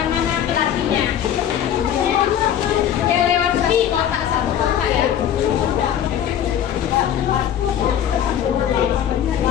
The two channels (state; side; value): quieter; right; 10.0 dB